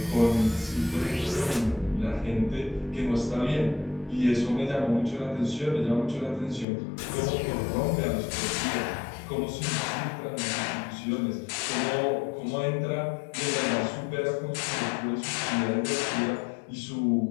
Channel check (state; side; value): drops out; right; at 6.7 s